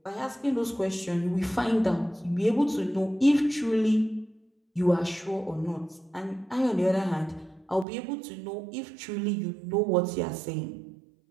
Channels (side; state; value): left; drops out; at 7.9 s